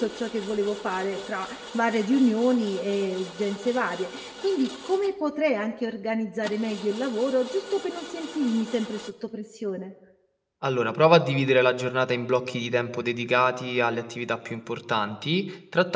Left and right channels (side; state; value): both; identical; correlation 1.00